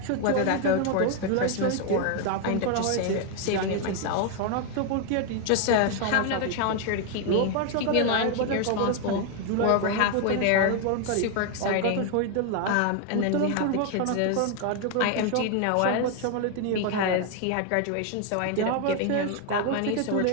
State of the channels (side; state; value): both; different; correlation 0.01